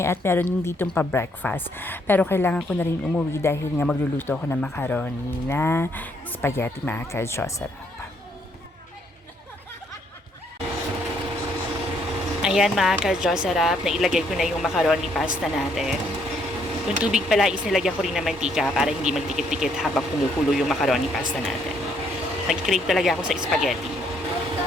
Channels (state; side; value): normal; both; correlation 0.70